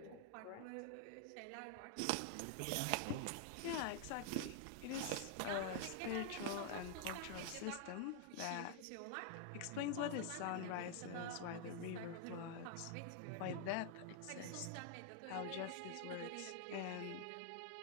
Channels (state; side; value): different; both; correlation 0.00